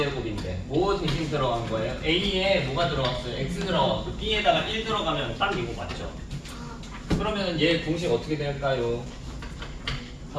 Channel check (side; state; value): both; identical; correlation 1.00